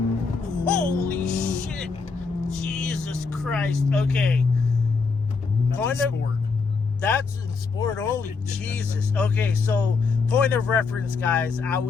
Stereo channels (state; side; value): quieter; right; 4.7 dB